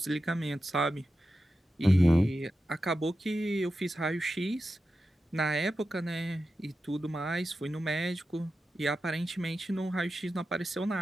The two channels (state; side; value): normal; both; correlation 0.91